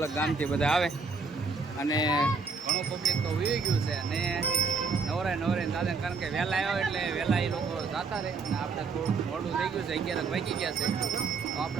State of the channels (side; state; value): left; quieter; 4.7 dB